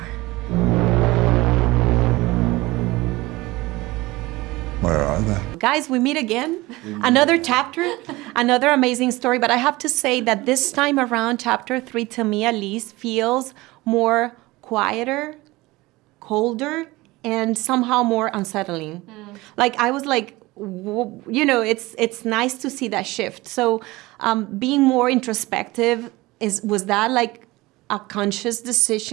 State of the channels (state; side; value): quieter; left; 20.5 dB